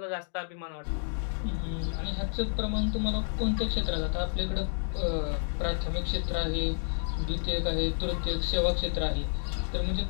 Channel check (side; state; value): right; silent; digital silence